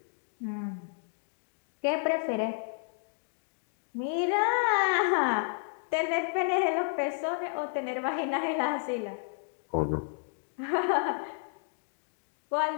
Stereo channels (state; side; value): silent; right; digital silence